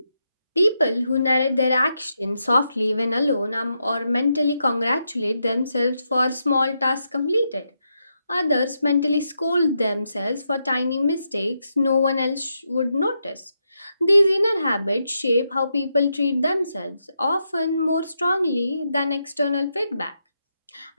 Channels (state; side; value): inverted; both; correlation -0.83